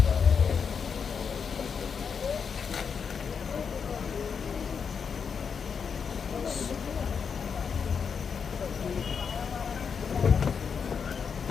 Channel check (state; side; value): quieter; right; 6.3 dB